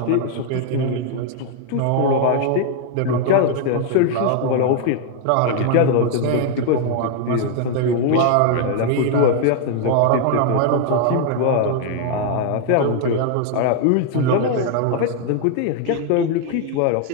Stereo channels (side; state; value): both; different; correlation 0.00